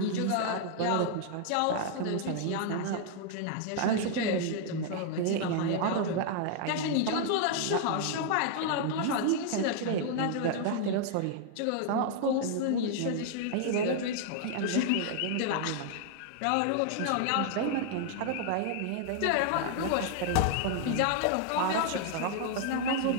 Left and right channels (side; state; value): both; different; correlation 0.00